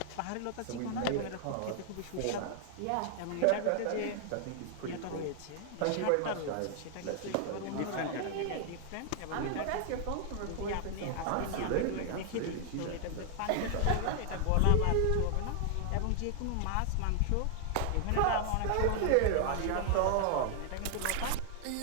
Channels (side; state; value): both; different; correlation 0.00